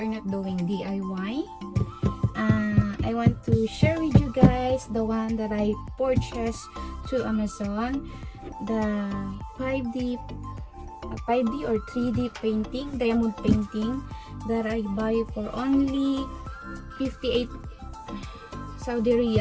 not doing DIY. I want to share with you guys the one that I purchased to Amazon, the 5D or 3D painting, diamond painting that I buy for only 58 Saudi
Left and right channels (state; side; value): identical; both; correlation 1.00